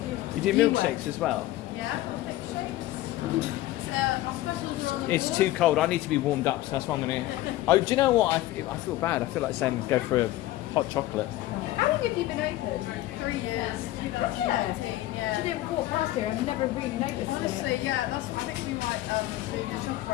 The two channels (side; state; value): right; quieter; 15.9 dB